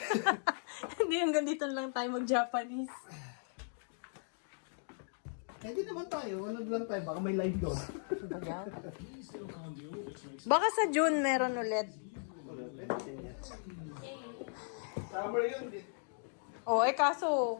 Hindi hanggang dito lang tayo mag-Japanese. Eh, di naman tayo. Ano lang tayo? Baka may live doon. Baka sa June meron ulit. Summer yun. Oh, kaso,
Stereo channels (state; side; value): silent; right; digital silence